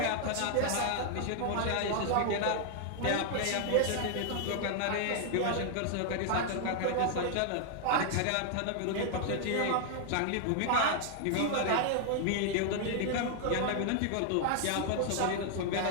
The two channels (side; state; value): both; different; correlation 0.00